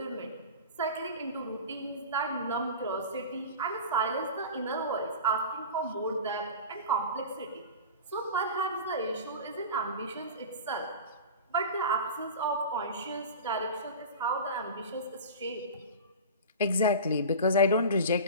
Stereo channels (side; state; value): both; inverted; correlation -0.32